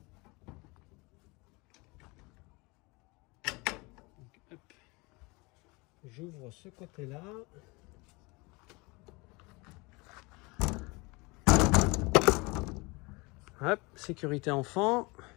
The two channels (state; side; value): quieter; right; 26.0 dB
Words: J'ouvre ce côté-là. Hop, sécurité enfant.